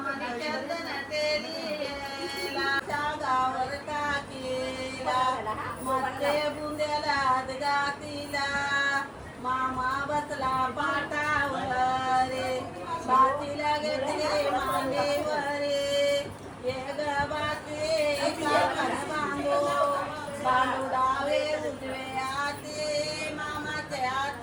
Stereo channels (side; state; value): both; identical; correlation 1.00